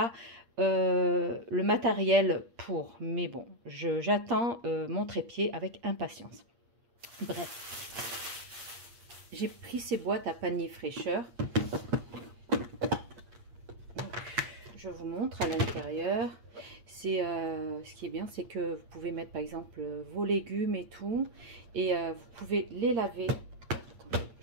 le matériel pour. Mais bon, j'attends mon trépied avec impatience. Bref, j'ai pris ces boîtes à panier fraîcheur. Je vous montre à l'intérieur. C'est ce qui est bien, c'est que vous pouvez mettre par exemple vos légumes et tout, et vous pouvez les laver. Attendez,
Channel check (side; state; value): left; late; 8.5 ms